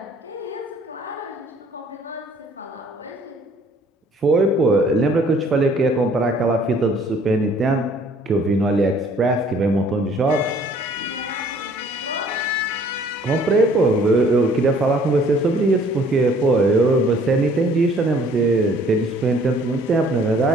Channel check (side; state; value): both; normal; correlation 0.57